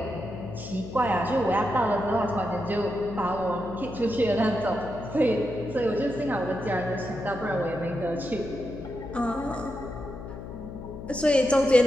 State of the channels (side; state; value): left; noise; hum, 11 dB below the sound